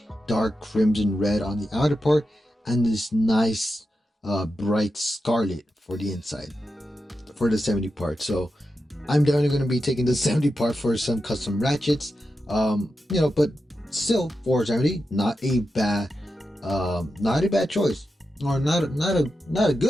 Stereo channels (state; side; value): normal; both; correlation 0.89